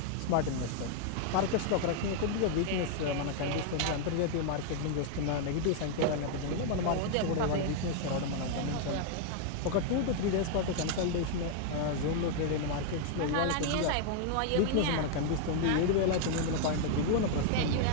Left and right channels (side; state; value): both; different; correlation 0.00